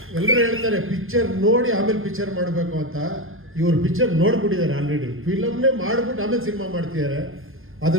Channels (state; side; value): late; left; 0.60 ms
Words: ಎಲ್ಲರೂ ಹೇಳ್ತಾರೆ ಪಿಕ್ಚರ್ ನೋಡಿ ಆಮೇಲೆ ಪಿಕ್ಚರ್ ಮಾಡಬೇಕು ಅಂತ. ಇವರು ಪಿಕ್ಚರ್ ನೋಡ್ಬಿಟ್ಟಿದ್ದಾರೆ ಆಲ್ರೆಡಿ. ಫಿಲಮ್ನೇ ಮಾಡ್ಬಿಟ್ಟು ಆಮೇಲೆ ಸಿನಿಮಾ ಮಾಡ್ತಿದ್ದಾರೆ.